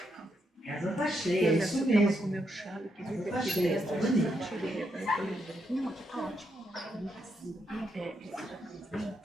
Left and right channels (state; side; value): normal; both; correlation 0.80